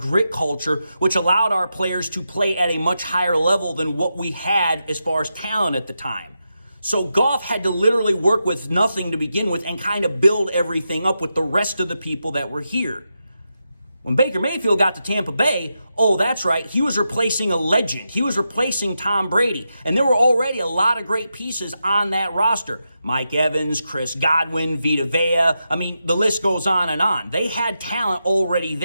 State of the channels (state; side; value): inverted; both; correlation -0.87